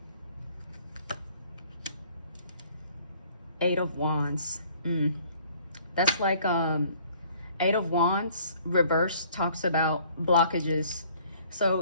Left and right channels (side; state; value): both; inverted; correlation -0.57